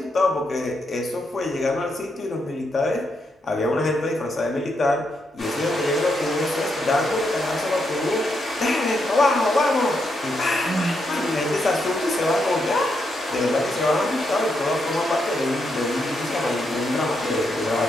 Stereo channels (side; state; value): both; normal; correlation 0.80